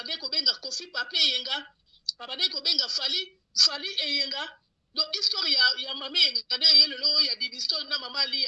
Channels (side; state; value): both; identical; correlation 1.00